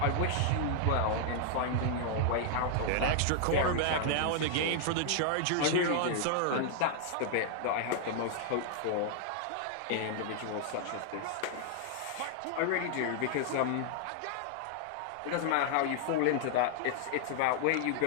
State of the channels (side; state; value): both; different; correlation -0.01